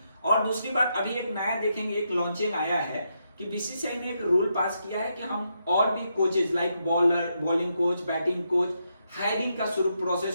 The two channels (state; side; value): inverted; both; correlation -0.81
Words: और दूसरी बात, अभी एक नया देखेंगे, एक लॉन्चिंग आया है कि बीसीसीआई ने एक रूल पास किया है कि हम और भी coaches like bowling coach, batting coach, hiring का